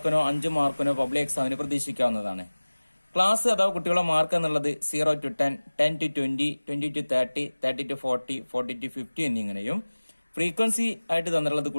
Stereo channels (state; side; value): inverted; both; correlation -1.00